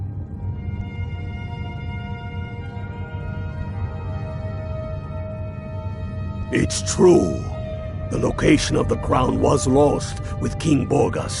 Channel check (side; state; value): both; identical; correlation 1.00